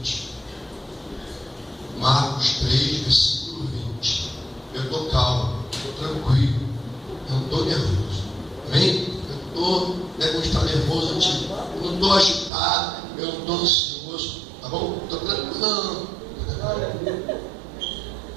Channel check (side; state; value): left; drops out; at 12.5 s